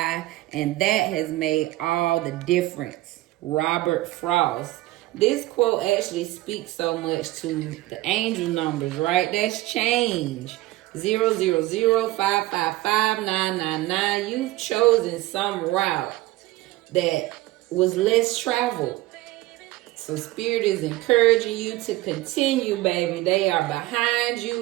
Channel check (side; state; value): left; quieter; 17.7 dB